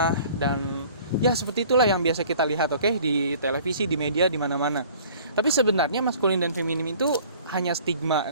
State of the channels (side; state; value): both; inverted; correlation -0.50